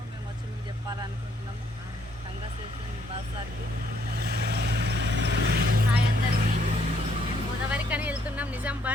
మేము వచ్చి మీకు చెప్పాలనుకుంటున్నాము. కంగ్రాచులేషన్ భరత్ సార్కి. హాయ్ అందరికీ. మేము గోదావరికని వెళ్తున్నాం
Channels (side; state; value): both; normal; correlation 0.69